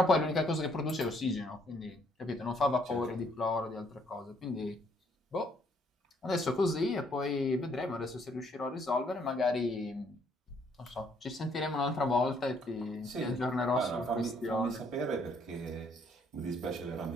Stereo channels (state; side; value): normal; both; correlation 0.68